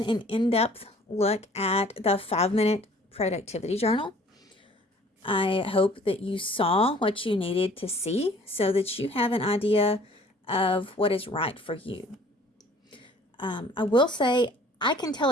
an in-depth look at the 5-minute productivity journal. I hope that you saw what you needed to see so that you have an idea of what is right for you. I will say I can tell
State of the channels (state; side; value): normal; both; correlation 0.53